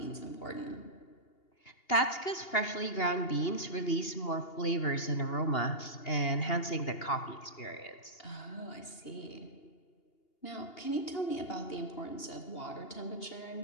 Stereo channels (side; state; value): right; late; 2.8 ms